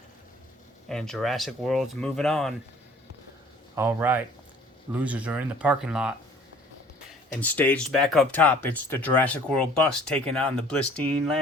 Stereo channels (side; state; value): both; normal; correlation 0.53